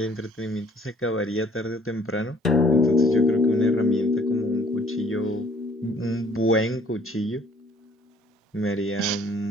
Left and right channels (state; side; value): normal; both; correlation 0.58